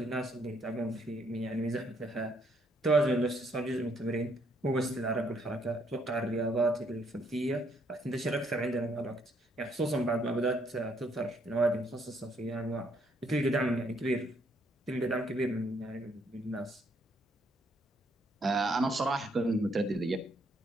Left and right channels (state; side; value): normal; both; correlation 0.70